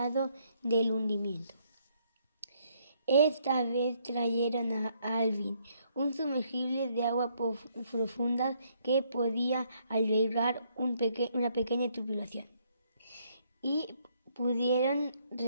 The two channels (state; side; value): inverted; both; correlation -0.70